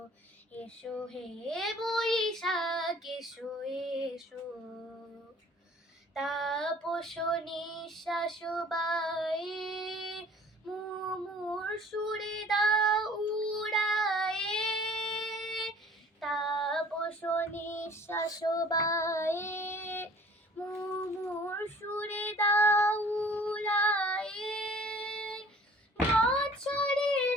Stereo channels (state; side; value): normal; both; correlation 0.51